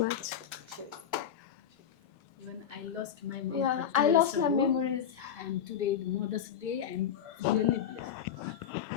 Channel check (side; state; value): right; quieter; 8.7 dB